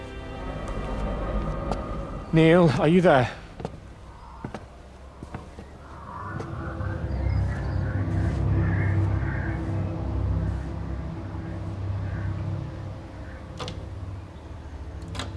Neil, are you there?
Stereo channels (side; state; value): both; identical; correlation 1.00